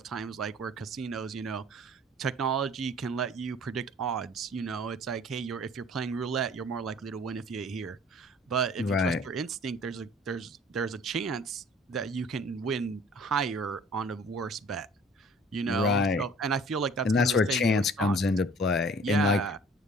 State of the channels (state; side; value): normal; both; correlation 0.51